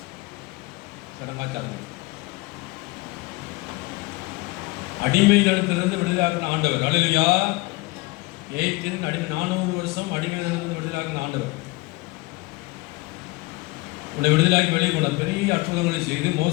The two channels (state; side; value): quieter; right; 23.1 dB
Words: சடங்காச்சாரங்கள் அடிமைதனத்திலிருந்து விடுதலாக்கின ஆண்டவர். அல்லேலூயா. எகிப்தின் அடிமை 400 வருஷம் அடிமைதனத்திலிருந்து விடுதலாக்கின ஆண்டவர் உடைய விடுதலாக்கி வெளியே கொண்டார். பெரிய அற்புதங்களை செய்து